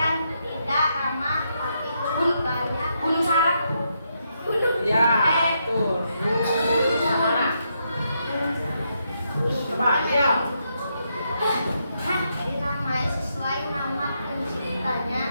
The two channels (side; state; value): both; inverted; correlation -0.80